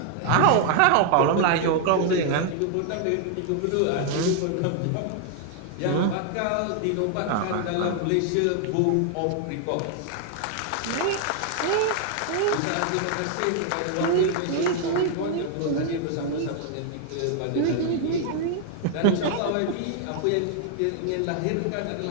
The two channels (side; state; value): both; different; correlation 0.00